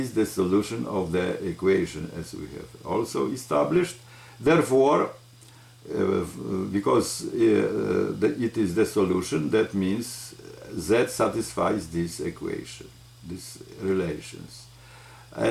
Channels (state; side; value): identical; both; correlation 1.00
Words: the solution of the equation, as we have also established. Therefore, because it is the solution, that means Z satisfies this equation, these relations.